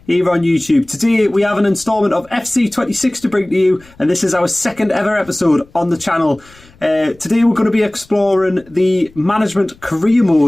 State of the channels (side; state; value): left; noise; rumble, 27 dB below the sound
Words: here on YouTube. Today we have an instalment of FC26 to bring to you, and this is our second ever episode on the channel. Today we're going to be exploring the management career